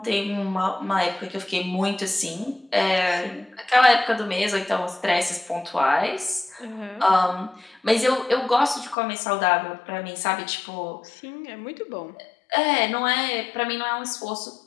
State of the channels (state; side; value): drops out; right; at 9.0 s